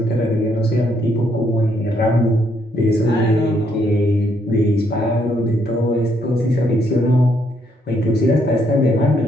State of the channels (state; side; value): normal; both; correlation 0.72